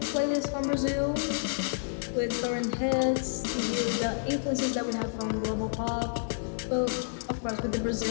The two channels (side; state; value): right; silent; digital silence